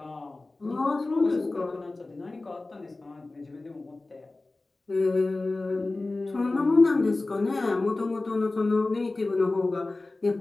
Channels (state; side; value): quieter; right; 3.2 dB